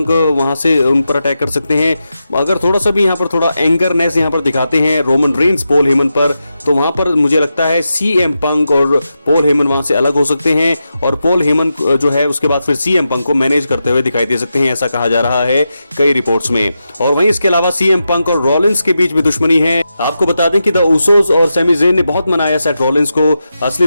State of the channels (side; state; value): both; inverted; correlation -0.89